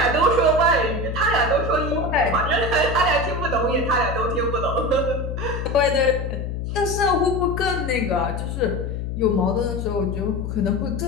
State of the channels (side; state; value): left; noise; hum, 4 dB below the sound